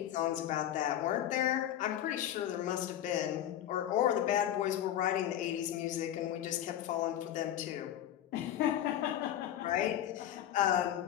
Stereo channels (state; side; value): quieter; right; 11.6 dB